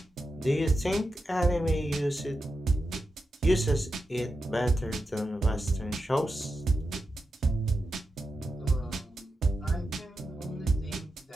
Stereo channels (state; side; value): normal; both; correlation 0.89